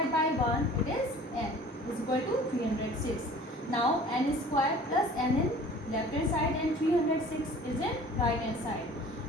by 1, it is n is equal to 306. Now n square plus n in left hand side and 306 is in right hand side.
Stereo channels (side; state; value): both; normal; correlation 0.47